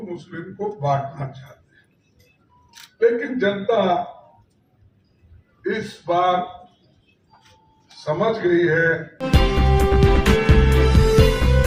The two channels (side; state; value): both; identical; correlation 1.00